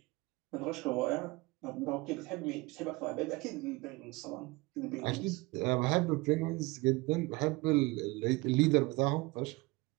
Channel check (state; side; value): quieter; left; 23.8 dB